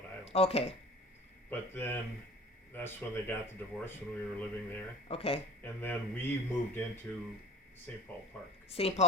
Island. okay, But then that's when they got the divorce when we were living there. okay. And then we moved into St. Paul Park. St.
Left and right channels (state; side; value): normal; both; correlation 0.43